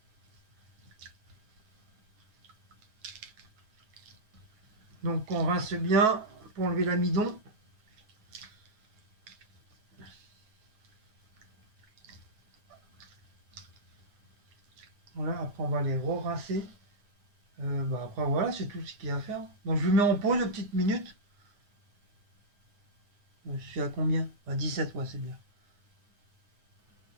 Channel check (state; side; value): late; left; 9.3 ms